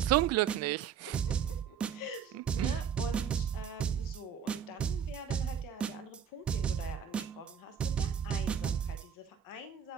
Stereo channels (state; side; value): quieter; left; 7.9 dB